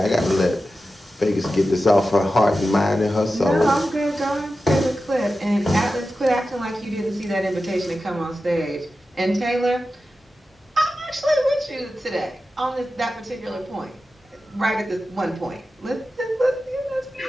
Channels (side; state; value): both; normal; correlation 0.93